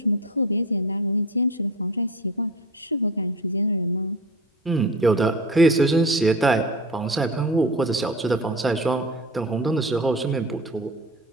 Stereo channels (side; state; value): both; normal; correlation 0.31